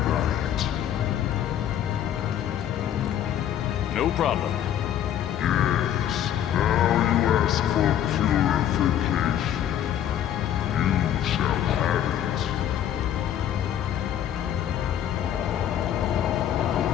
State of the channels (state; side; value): quieter; right; 10.6 dB